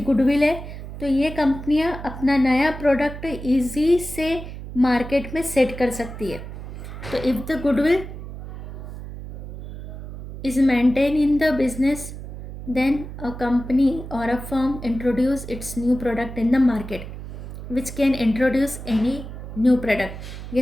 गुडविल है, तो ये कंपनियां अपना नया प्रोडक्ट इजी से मार्केट में सेट कर सकती है. तो if the goodwill is maintain in the business, then a company और a firm introduce its new product in the market which can introduce any new product.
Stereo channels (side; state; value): right; noise; hum, 10 dB below the sound